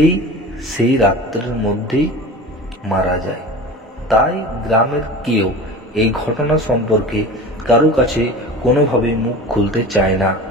সেই রাত্রের মধ্যেই মারা যায়। তাই গ্রামের কেউ এই ঘটনা সম্পর্কে কারো কাছে কোনোভাবে মুখ খুলতে চায় না।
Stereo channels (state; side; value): normal; both; correlation 0.35